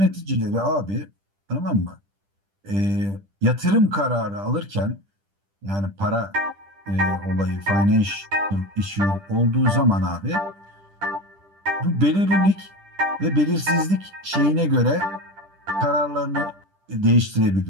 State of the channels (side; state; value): left; late; 10 ms